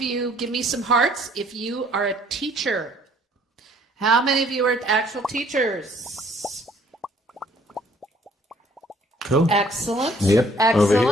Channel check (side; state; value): both; normal; correlation 0.60